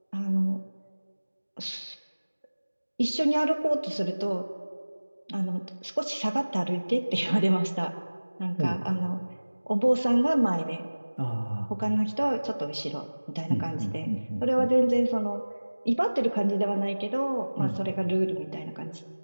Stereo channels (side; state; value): both; inverted; correlation -1.00